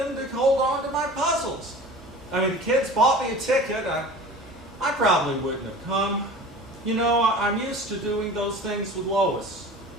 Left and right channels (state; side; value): normal; both; correlation 0.39